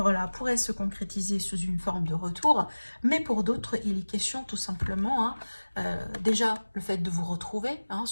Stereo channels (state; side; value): inverted; both; correlation -1.00